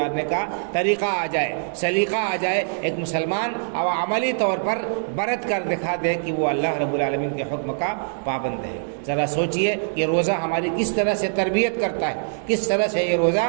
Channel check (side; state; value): left; silent; digital silence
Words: کا طریقہ آ جائے، سلیقہ آ جائے، ایک مسلمان اور عملی طور پر برت کر دکھا دے کہ وہ اللہ رب العالمین کے حکم کا پابند ہے۔ ذرا سوچئے کہ روزہ ہماری کس طرح سے تربیت کرتا ہے، کس طرح سے یہ